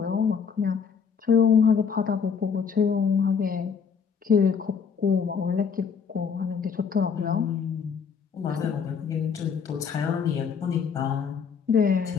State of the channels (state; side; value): quieter; right; 6.4 dB